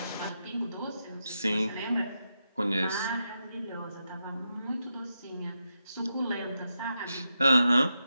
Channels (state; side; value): inverted; both; correlation -0.86